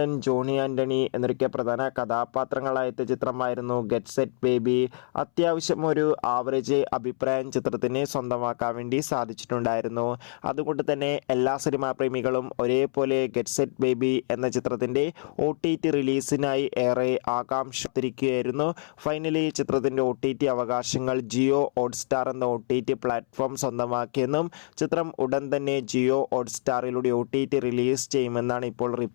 ജോണി ആൻ്റണി എന്നൊക്കെ പ്രധാന കഥാപാത്രങ്ങളായ ചിത്രമായിരുന്നു ഗെറ്റ് സെറ്റ് ബേബി. അത്യാവശ്യം ഒരു ആവറേജ് അഭിപ്രായം ചിത്രത്തിന് സ്വന്തമാക്കാൻ വേണ്ടി സാധിച്ചിട്ടുണ്ടായിരുന്നു. അതുകൊണ്ട് തന്നെ എല്ലാ സിനിമാ പ്രേമികളും ഒരേപോലെ ഗെറ്റ് സെറ്റ് ബേബി എന്ന ചിത്രത്തിൻ്റെ OTT റിലീസിനായി ഏറെ ആകാംക്ഷത്തിരിക്കുകയായിരുന്നു. ഫൈനലി ചിത്രത്തിൻ്റെ OTT അവകാശങ്ങൾ ജിയോ ഹോട്ട്സ്റ്റാർ എന്ന OTT പ്ലാറ്റ്ഫോം സ്വന്തമാക്കിയെന്നും ചിത്രം ഉടൻ തന്നെ ജിയോ ഹോട്ട്സ്റ്റാറിലൂടെ OTT റിലീസ് ചെയ്യുമെന്നാണ് ഇപ്പോൾ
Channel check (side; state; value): right; silent; 61 dB below the other